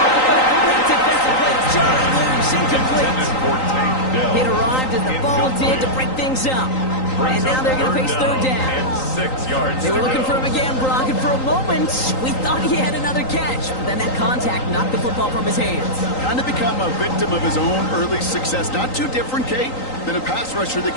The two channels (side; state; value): right; late; 3.9 ms